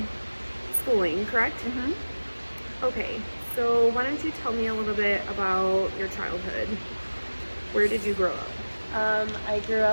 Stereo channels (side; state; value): both; inverted; correlation -1.00